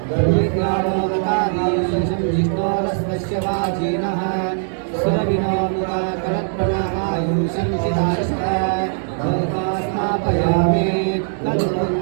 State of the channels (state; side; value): silent; left; digital silence